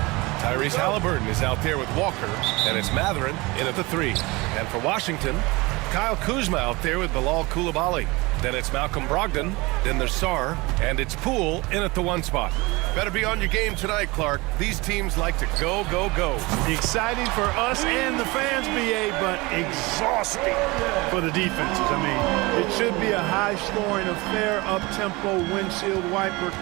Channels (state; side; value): quieter; left; 23.6 dB